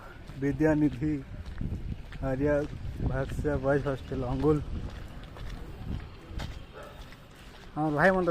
विद्यानिधि आर्या भाष्य बॉयज हॉस्टेल अंगुल আমার ভাই মনে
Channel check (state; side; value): identical; both; correlation 1.00